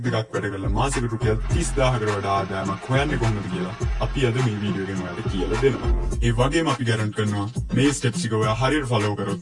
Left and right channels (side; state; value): both; identical; correlation 1.00